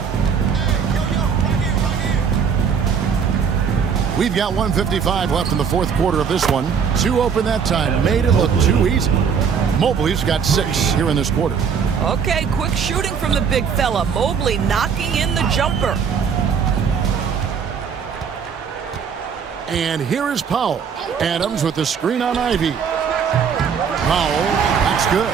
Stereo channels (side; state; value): left; quieter; 6.7 dB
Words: We've got 1:55 left in the fourth quarter of this one. 2 open that time. Made it look too easy. Mobley's got 6 here in this quarter. Okay, quick shooting from the big fella. Mobley knocking in the jumper. And here is Powell. Adams with the screen on Ivy. Powell, that's good.